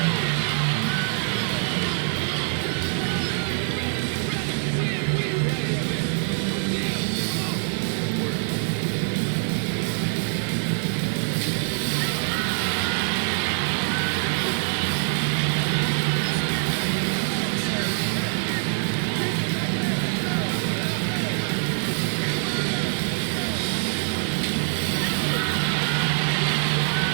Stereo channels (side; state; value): left; silent; 62 dB below the other